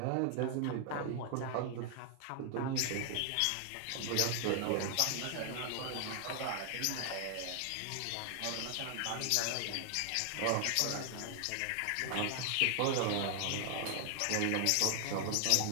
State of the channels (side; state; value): both; different; correlation 0.00